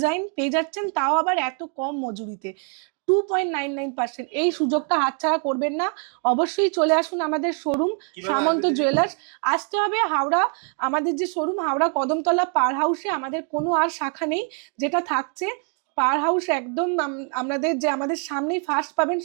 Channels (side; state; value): left; quieter; 39.8 dB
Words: পেয়ে যাচ্ছেন, তাও আবার এত কম মজুরিতে 2.99%। এই সুযোগটা হাতছাড়া করবেন না, অবশ্যই চলে আসুন আমাদের শোরুম সামন্ত জুয়েলার্স। আসতে হবে হাওড়া, আমাদের যে শোরুম হাওড়া কদমতলা পার হাউসে, আমাদের কোনো আর শাখা নেই, যেটা থাকছে পার হাউস একদম আমাদের সামনেই ফার্স্ট পাবেন